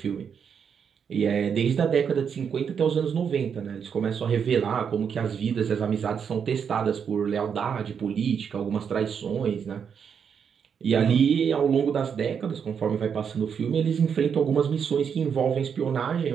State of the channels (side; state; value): left; quieter; 7.1 dB